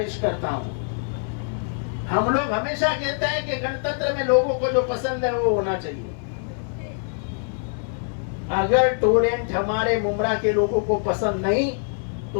करता हूं, हम लोग हमेशा कहते हैं कि गणतंत्र में लोगों को जो पसंद है वो होना चाहिए। अगर टोरेंट हमारे मुमरा के लोगों को पसंद नहीं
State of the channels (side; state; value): right; silent; 60 dB below the other